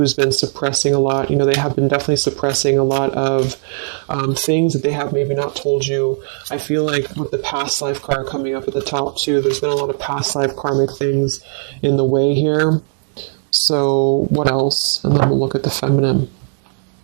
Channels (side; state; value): left; silent; digital silence